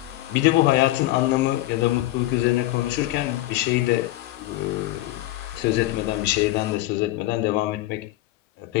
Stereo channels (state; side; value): quieter; right; 16.7 dB